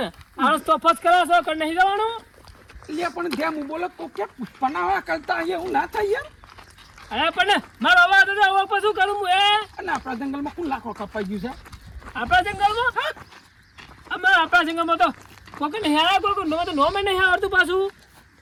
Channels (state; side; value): identical; both; correlation 1.00